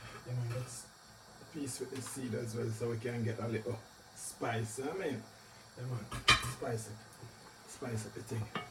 this piece with the seed as well so we can get a little spice. I mean, spice up the thing.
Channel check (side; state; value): both; identical; correlation 1.00